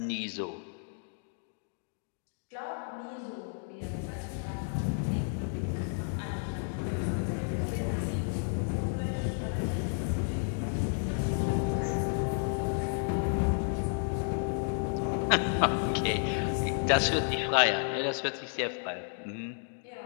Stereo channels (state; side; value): silent; right; 56 dB below the other